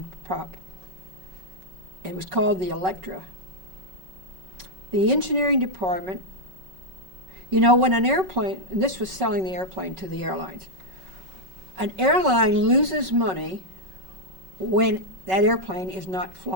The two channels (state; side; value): late; left; 5.3 ms